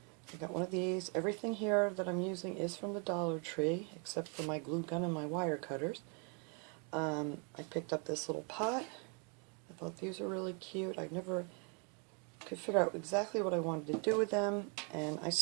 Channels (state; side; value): quieter; left; 37.2 dB